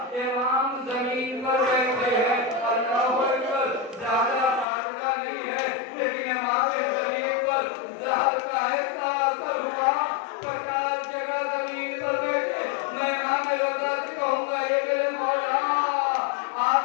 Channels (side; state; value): right; drops out; at 4.7 s